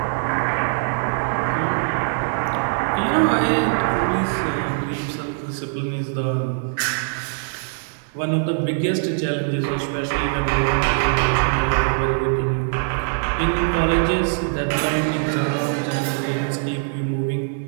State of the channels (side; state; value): left; silent; digital silence